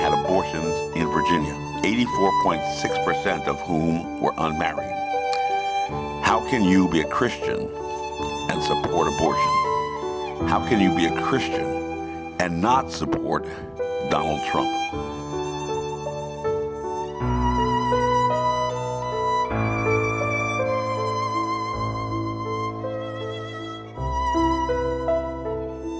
abortions in Virginia, 84.6% of whom were unmarried. How can you be a Christian and support abortion? How can you be a Christian and not support Donald Trump?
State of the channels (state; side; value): identical; both; correlation 1.00